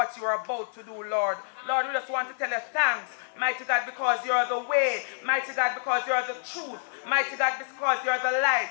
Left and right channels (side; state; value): right; silent; 60 dB below the other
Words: you are about to do, Lord. Lord, we just want to tell you thanks, mighty God, because you are the way, mighty God, because you are the truth, mighty God, because you are the light.